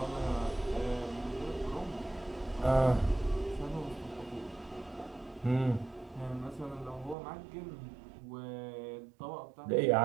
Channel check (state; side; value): drops out; left; at 7.2 s